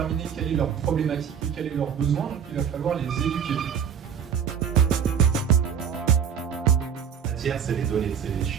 quelle est leur problématique et quel est leur besoin, donc il va falloir les éduquer. La matière, c'est les données, c'est les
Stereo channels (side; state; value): left; quieter; 7.8 dB